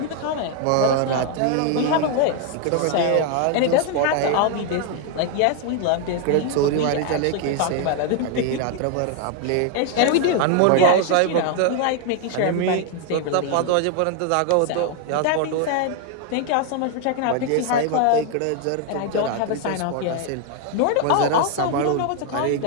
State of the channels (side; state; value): both; different; correlation 0.00